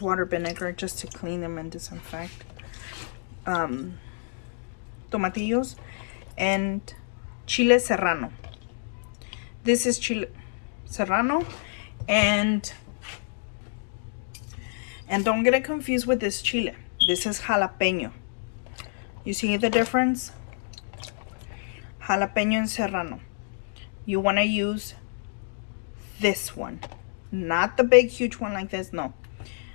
water vinegar just to clean them and disinfect. Tomatillos and Chile Serrano. This is Chile Serrano, and don't get it confused with this chile. This is jalapeno. You see the difference? Jalapeno and serrano. You want to use this one, not the big huge one like this. No,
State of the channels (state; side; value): silent; right; digital silence